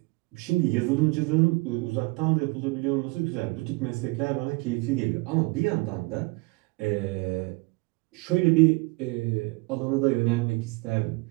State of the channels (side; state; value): left; quieter; 26.3 dB